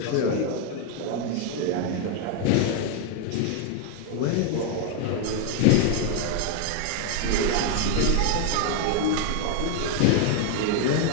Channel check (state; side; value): different; both; correlation 0.01